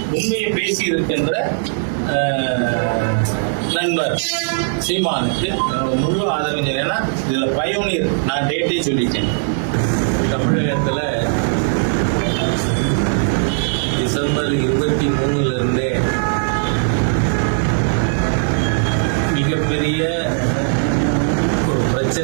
உண்மையை பேசி இருக்கின்ற நண்பர் சீமானுக்கு முழு ஆதரவு. ஏன்னா இதுல பயோனியர், நான் டேட்டே சொல்லிட்டேன். தமிழகத்துல டிசம்பர் 23 இருந்தே மிகப்பெரிய ஒரு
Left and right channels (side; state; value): left; silent; 67 dB below the other